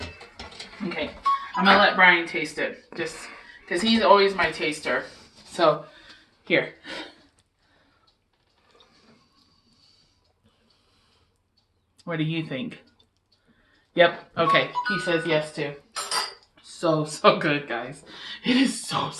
Okay, I'm gonna let Brian taste it, just because he's always my taster. So, here. What do you think? Yep. Okay. He says yes too. So good, guys. It is so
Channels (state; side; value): identical; both; correlation 1.00